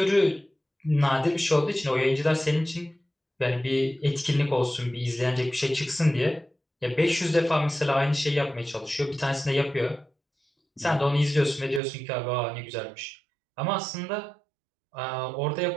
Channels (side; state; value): left; drops out; at 11.8 s